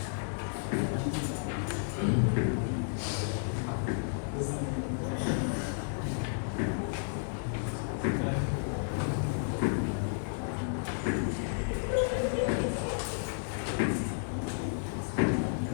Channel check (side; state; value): right; silent; 56 dB below the other